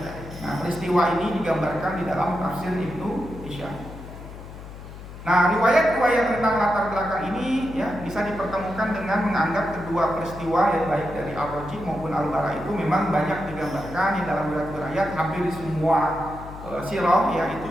Nah, peristiwa ini digambarkan di dalam tafsir Ibnu Hisham. Nah, riwayat-riwayat tentang latar belakang ini ya bisa dipertemukan dengan menganggap kedua peristiwa yang baik dari Al-Raji maupun Al-Bara itu memang banyak digambarkan di dalam riwayat hampir semua sirah ya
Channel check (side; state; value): left; noise; hum, 13 dB below the sound